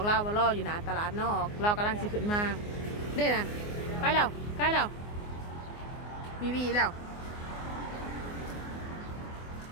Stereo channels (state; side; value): late; right; 24 ms